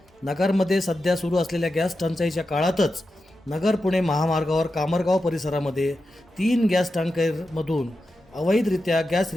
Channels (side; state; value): both; normal; correlation 0.90